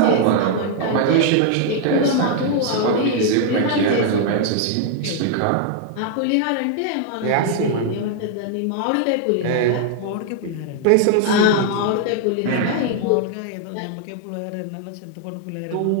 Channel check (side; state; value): both; different; correlation 0.00